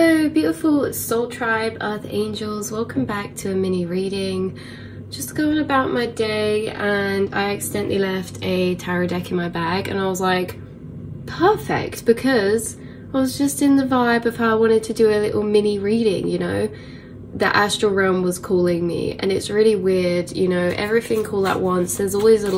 Hello beautiful soul tribe, earth angels, welcome back to a mini reading. Just going about my day and I accidentally left a tarot deck in my bag and I was like, perfect, because I was just in the vibe of how I wanted to do a little mini reading, you know. The astral realm was calling me and it's really weird, you know, everything all at once. There's always a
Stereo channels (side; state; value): both; identical; correlation 1.00